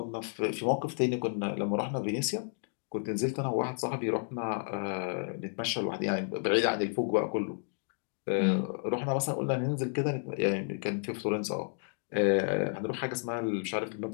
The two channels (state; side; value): silent; right; 57 dB below the other